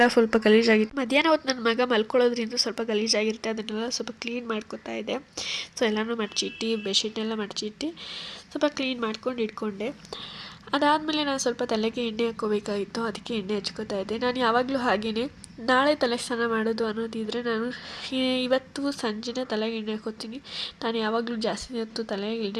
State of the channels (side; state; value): both; identical; correlation 1.00